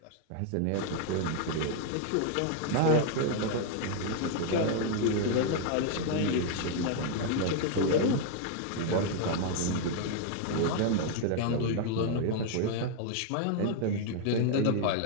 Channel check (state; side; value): different; both; correlation 0.00